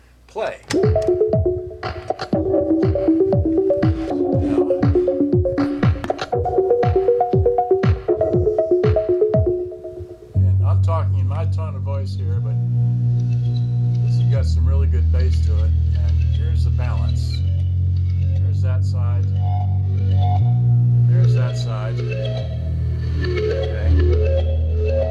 play. high tone of voice here, but this has got some really good bass to it. And here's the balance. There's that side. There's that side. Okay.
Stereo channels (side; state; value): both; identical; correlation 1.00